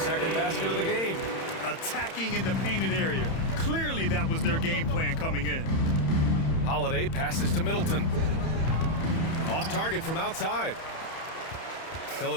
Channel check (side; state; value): right; late; 31 ms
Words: basket of the game. Attacking in the painted area. Clearly that was their game plan coming in. Holiday passes to Middleton. Off target from outside.